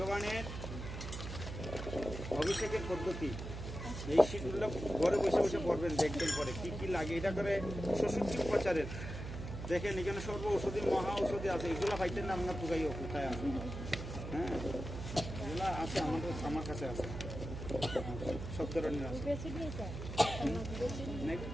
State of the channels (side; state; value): right; noise; hum, 7 dB below the sound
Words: অভিষেকের পদ্ধতি। এই শীতগুলো ঘরে বসে বসে পড়বেন, দেখবেন পরে কি কি লাগে। এটা করে 66 উপচারের দেখেন এখানে সর্ব ঔষধি মহা ঔষধি আছে। এগুলো পাইতেন না আপনার পুকাই কোথায় আছে? হ্যাঁ এগুলো আছে আমার কাছে আছে, সব ধরনের আছে। না,